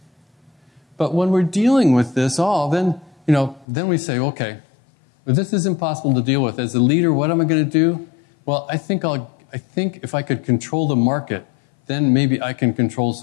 But when we're dealing with this all, then we say, okay, well, this is impossible to deal with. As a leader, what am I going to do? Well, I think if I could control the market, then maybe I can control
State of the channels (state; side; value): drops out; right; at 3.7 s